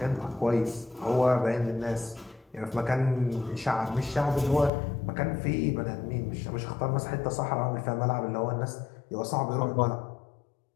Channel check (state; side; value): drops out; right; at 4.7 s